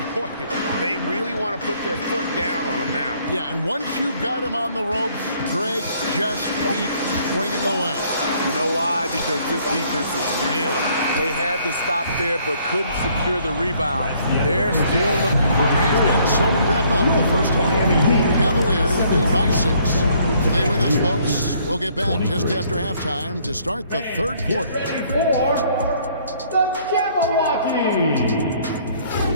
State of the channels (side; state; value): both; inverted; correlation -0.63